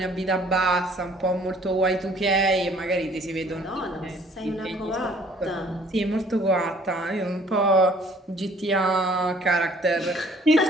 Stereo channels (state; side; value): normal; both; correlation 0.57